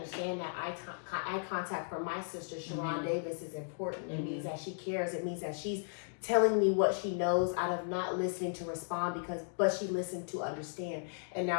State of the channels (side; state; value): right; silent; digital silence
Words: that eye contact for my sister Sharon Davis is important. It means that she cares. It means that she's telling me what she knows out of not listening to respond, but she listened to understand, and